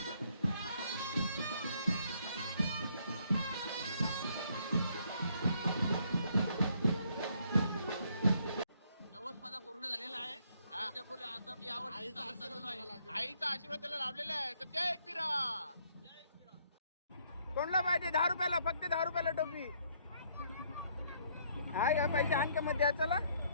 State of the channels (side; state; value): both; inverted; correlation -0.67